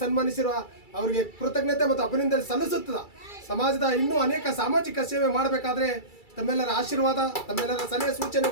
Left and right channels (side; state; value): right; late; 2.3 ms